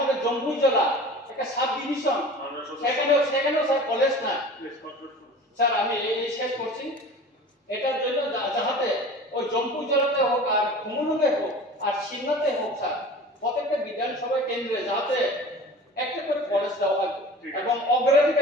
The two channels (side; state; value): both; normal; correlation 0.39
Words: জম্মু জেলা একটা সাব ডিভিশন সেখানেও স্যার কলেজ না স্যার। আমি এই শেষ করছি, এটার জন্য যাহাতে ওই জম্মু জেলাতে হোক আর কুমুলুঙে হোক আর সিন্নাতে হোক স্যার, প্রত্যেকটা বিধানসভা কেন্দ্রে যাতে একটা করে কলেজ দেওয়া হয় এবং